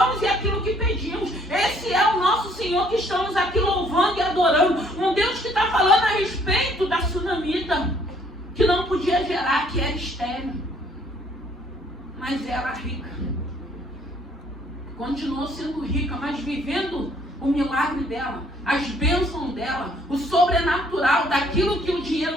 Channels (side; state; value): both; normal; correlation 0.63